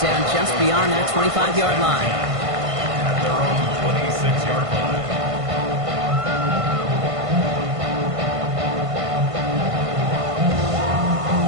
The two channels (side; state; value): left; late; 1.5 ms